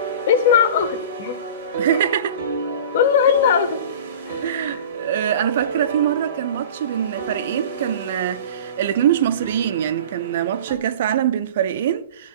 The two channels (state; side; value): inverted; both; correlation -0.38